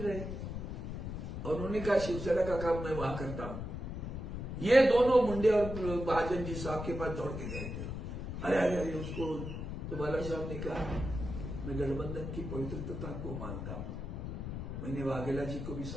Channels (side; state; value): left; noise; rumble, 6 dB below the sound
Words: और उन्होंने कहा शिवसेना का काम मैं वहां करता हूं। ये दोनों मुंडे और महाजन जी साहब के पास दौड़ के गए थे। अरे अरे अरे उसको तो बाला साहब ने कहा मैं गठबंधन की पवित्रता को मानता हूं, मैंने वाघेला जी को भी